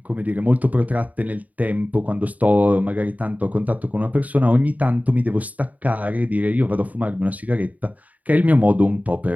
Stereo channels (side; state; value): left; late; 0.074 ms